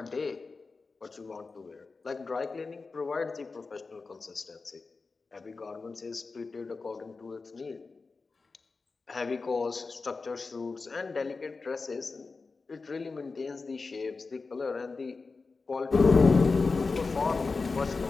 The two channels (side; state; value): right; quieter; 4.2 dB